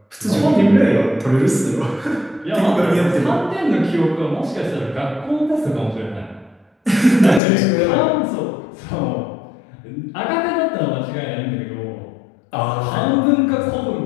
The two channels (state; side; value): drops out; right; at 7.4 s